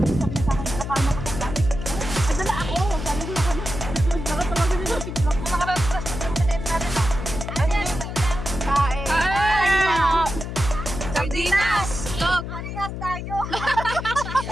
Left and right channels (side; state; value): left; noise; hum, 7 dB below the sound